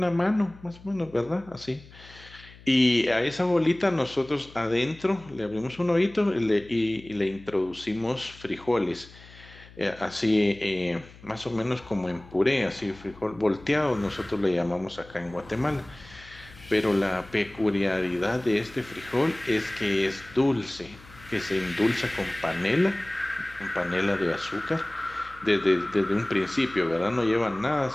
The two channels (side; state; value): left; noise; hum, 21 dB below the sound